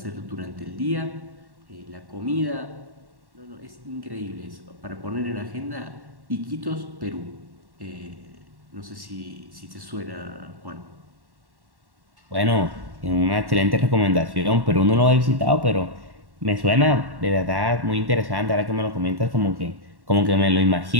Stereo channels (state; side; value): late; left; 1.1 ms